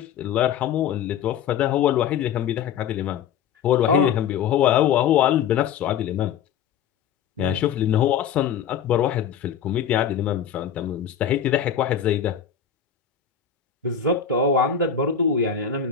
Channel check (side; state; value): right; quieter; 8.3 dB